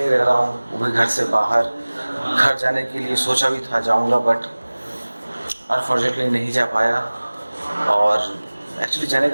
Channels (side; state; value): both; inverted; correlation -1.00